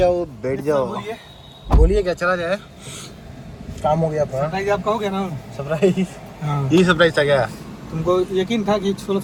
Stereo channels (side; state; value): both; identical; correlation 1.00